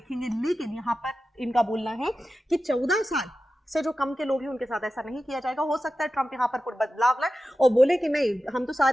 लेकिन यहां पर इनका बोलना है कि 14 साल से जो कम के लोग हैं उनके साथ ऐसा नहीं किया जाएगा। हो सकता है ट्रंप यहां पर कुछ बदलाव लाए और बोले कि नहीं, हम तो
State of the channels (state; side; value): normal; both; correlation 0.93